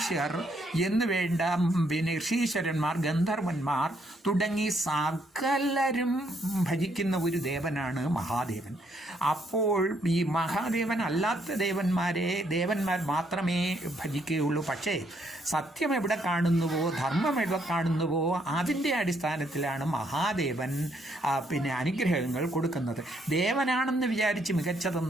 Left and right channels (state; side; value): normal; both; correlation 0.72